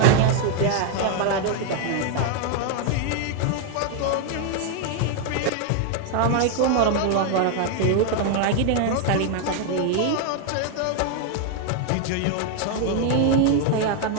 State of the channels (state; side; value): different; both; correlation 0.00